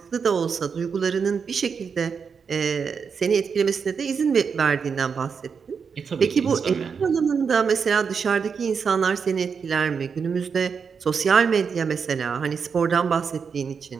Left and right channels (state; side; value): quieter; left; 6.1 dB